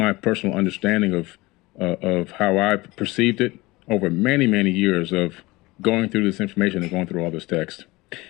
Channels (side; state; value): right; quieter; 21.5 dB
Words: personal understanding of how I perceived it over many, many years of going through this information and going through all this text.